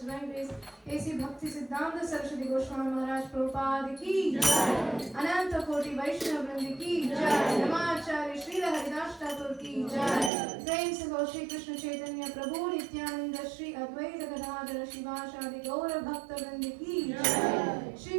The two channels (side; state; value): left; drops out; at 10.3 s